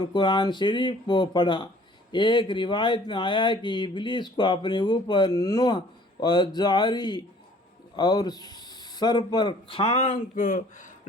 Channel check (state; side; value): normal; both; correlation 0.54